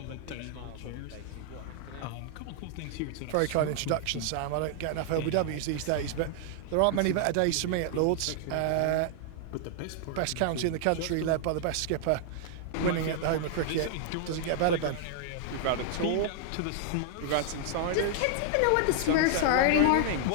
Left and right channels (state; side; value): different; both; correlation 0.00